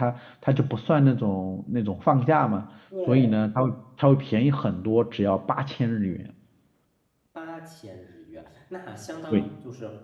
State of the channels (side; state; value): both; identical; correlation 1.00